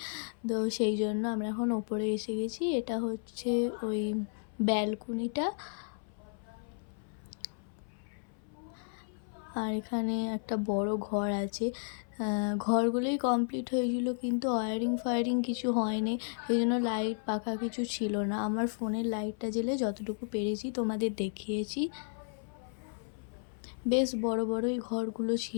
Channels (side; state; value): right; silent; 56 dB below the other